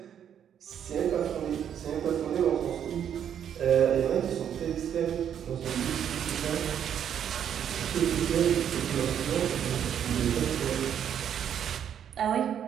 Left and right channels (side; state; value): left; quieter; 9.1 dB